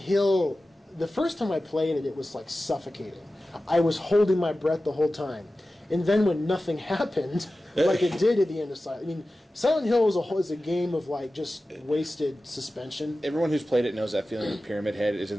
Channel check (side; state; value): both; normal; correlation 0.95